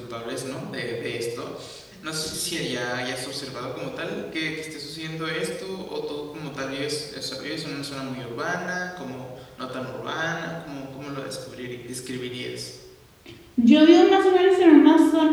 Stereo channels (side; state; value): both; identical; correlation 1.00